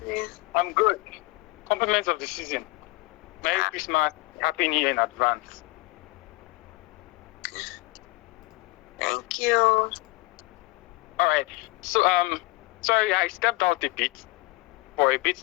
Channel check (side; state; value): right; quieter; 22.3 dB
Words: I'm good. Compliments of the season. Merry Christmas. Happy New Year in advance. Thank you. All right. So, sorry, I stepped out for a bit